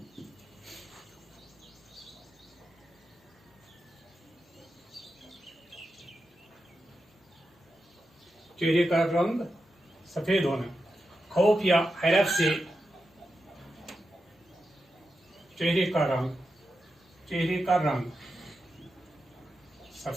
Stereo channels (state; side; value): normal; both; correlation 0.89